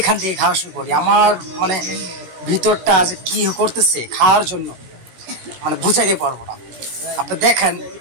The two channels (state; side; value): late; left; 17 ms